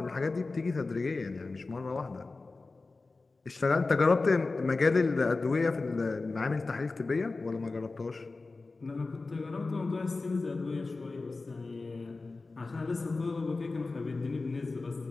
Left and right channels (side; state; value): right; quieter; 3.6 dB